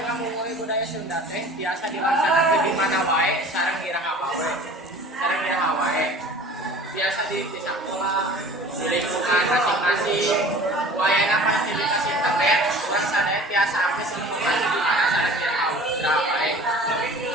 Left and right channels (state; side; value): normal; both; correlation 0.44